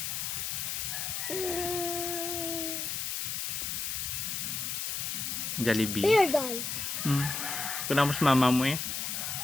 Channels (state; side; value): noise; left; hiss, 2 dB below the sound